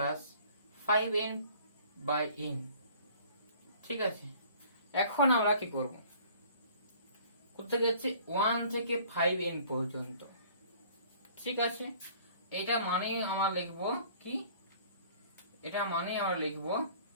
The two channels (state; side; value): inverted; both; correlation -0.53